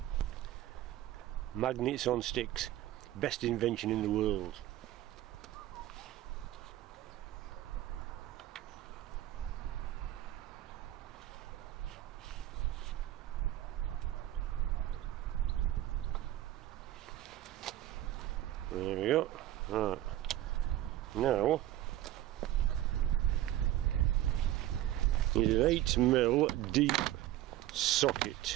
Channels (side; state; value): left; quieter; 13.8 dB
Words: Magnets on sticks, best invention in the world. There we go. Right. Now is an 8mm deep